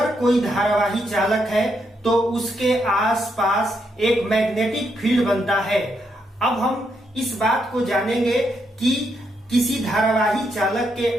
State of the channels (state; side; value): normal; both; correlation 0.78